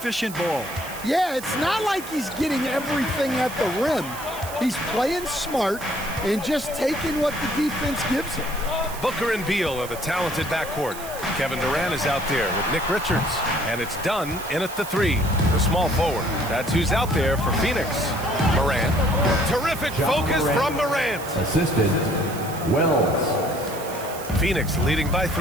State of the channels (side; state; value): right; noise; hiss, 13 dB below the sound